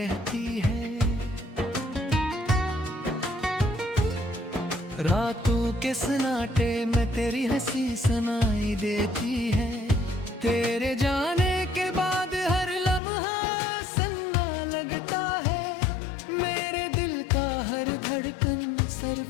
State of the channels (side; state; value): right; drops out; at 13.0 s